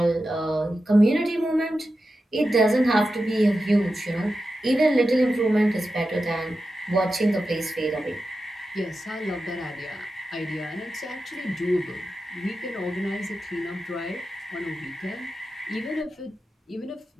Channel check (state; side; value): normal; both; correlation 0.91